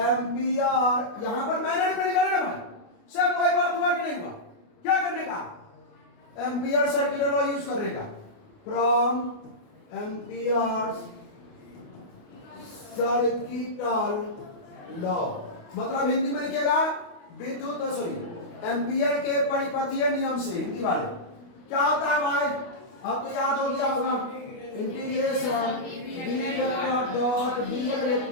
यहां पर मैग्नेटिक फील्ड निकाले ना भाई, सब कोई बात हुआ कि नहीं हुआ, क्या करने का, एम्पियर सर्किट लॉ यूज करने का। फ्रॉम एम्पियर सर्किटल लॉ, मतलब हिंदी में लिखेगा विद्युत एम्पियर के परिपथीय नियम से। हिंदी वाले क्या होता है भाई, अब तो याद हो गया होगा, integration B vector dot DL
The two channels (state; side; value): late; right; 29 ms